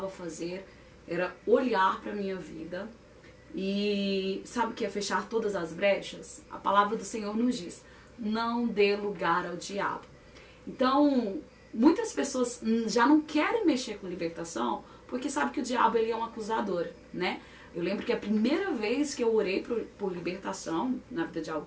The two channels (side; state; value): both; identical; correlation 1.00